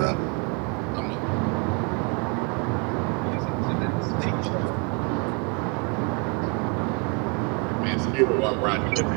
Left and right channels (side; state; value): left; quieter; 33.7 dB